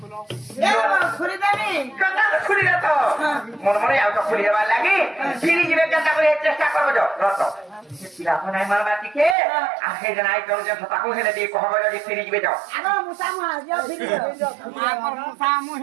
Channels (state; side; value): drops out; left; at 9.3 s